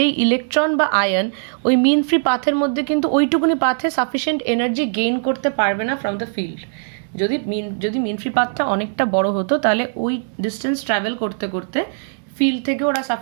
ইলেকট্রন বা আয়ন ওই মিন ফ্রি পাথের মধ্যে কিন্তু ওইটুকুনি পাথে সাফিসিয়েন্ট এনার্জি গেইন করতে পারবে না ফ্রম দ্য ফিল্ড। যদি মিন ফ্রি পাথটা অনেকটা বড় হতো তাহলে ওই ডিস্টেন্স ট্রাভেল করতে করতে ফিল্ড থেকে ওরা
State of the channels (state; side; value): silent; left; digital silence